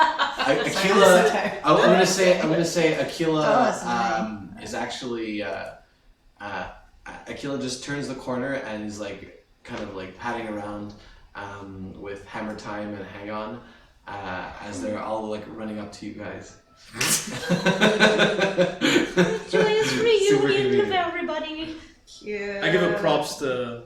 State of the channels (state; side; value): identical; both; correlation 1.00